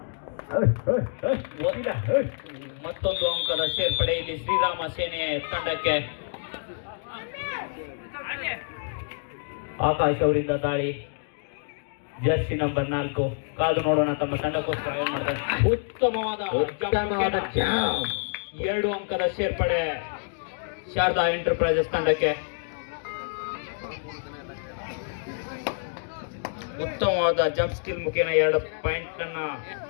ಮತ್ತೊಂದು ಅಂಕದ ಸೇರ್ಪಡೆ ಇಲ್ಲಿ ಶ್ರೀರಾಮ ಸೇನೆಯ ತಂಡಕ್ಕೆ. ಆಕಾಶ್ ಅವರಿಂದ ದಾಳಿ. Jersey number 4. ಕಾದು ನೋಡೋಣ ತಮ್ಮ ತಂಡಕ್ಕೋಸ್ಕರ ಏನ್ ಮಾಡ್ತಾರೆ. ಉತ್ತಮವಾದ 2 ಅಂಕದ ಸೇರ್ಪಡೆ ಶಾರದಾ ಎಂಟರ್ಪ್ರೈಸಸ್ ತಂಡಕ್ಕೆ. ಉತ್ತಮವಾದ ಜಂಪ್ ಸ್ಕಿಲ್ ಮುಖೇನ 2 ಪಾಯಿಂಟ್ ಅನ್ನ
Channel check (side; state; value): right; silent; digital silence